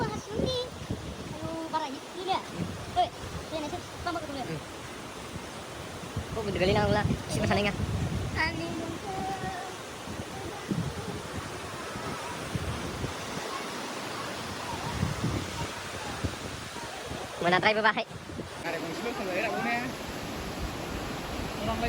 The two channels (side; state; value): both; identical; correlation 1.00